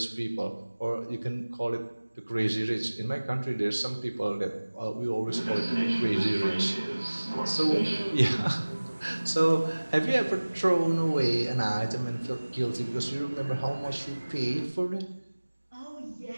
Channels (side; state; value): both; inverted; correlation -1.00